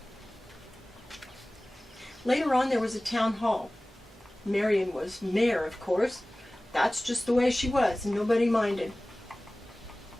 Later on there was a town hall. Marion was mayor, of course. That's just the way she was, and nobody minded.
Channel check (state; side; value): normal; both; correlation 0.98